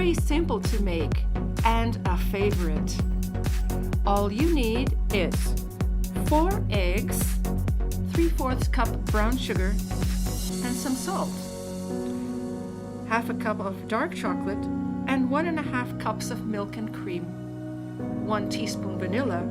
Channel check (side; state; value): both; identical; correlation 1.00